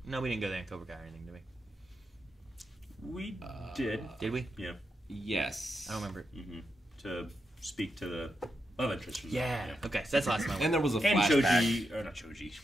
no, we didn't go there in Cobra Kai or anything, did we? We did. Did we? Yeah. Yes. I don't remember. To speak to the love interest. From Yeah. Okay, so that's the last time I And went. there was a And flashback. Choji, or not Choji.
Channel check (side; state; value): both; normal; correlation 0.85